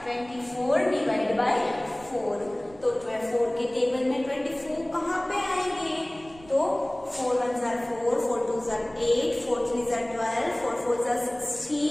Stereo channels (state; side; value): noise; right; rumble, 23 dB below the sound